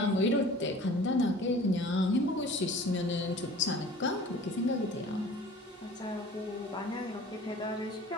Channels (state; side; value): normal; both; correlation 0.45